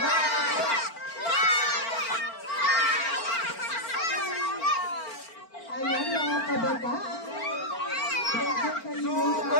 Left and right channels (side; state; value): right; late; 4.4 ms